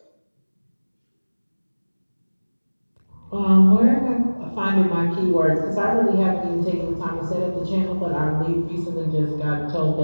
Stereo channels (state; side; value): inverted; both; correlation -1.00